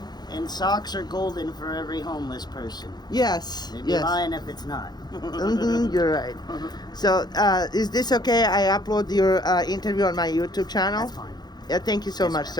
And socks are golden for every homeless person. Yes. They'd be Yes. lying if it's not. You're right. So, is this okay? I upload your interview on my YouTube channel? That's fine. Yeah, thank you so Yes, much, ma'am.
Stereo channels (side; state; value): right; late; 0.20 ms